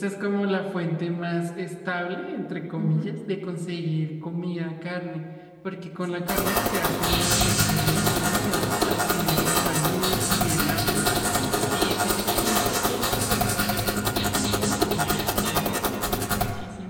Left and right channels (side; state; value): both; identical; correlation 1.00